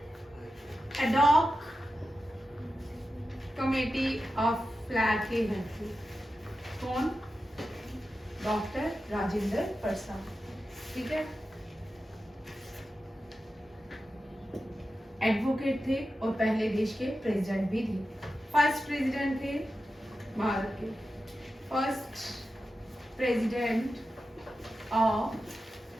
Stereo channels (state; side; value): normal; both; correlation 0.91